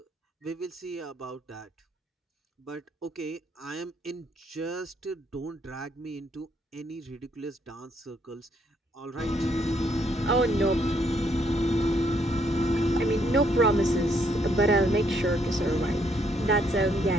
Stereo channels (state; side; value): normal; both; correlation 0.71